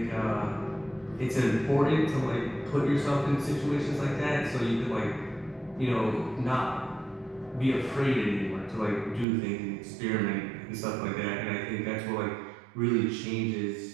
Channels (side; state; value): left; drops out; at 9.2 s